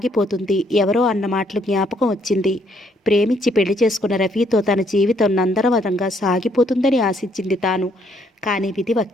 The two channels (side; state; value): both; normal; correlation 0.69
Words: ఎవరో అన్న మాటలు జ్ఞాపకం వచ్చింది. ప్రేమించి పెళ్లి చేసుకున్న రఫీతో తన జీవితం నందనవనంగా సాగిపోతుందని ఆశించింది తాను. కానీ విధి